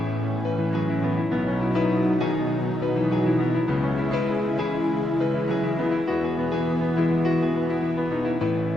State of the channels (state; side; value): normal; both; correlation 0.82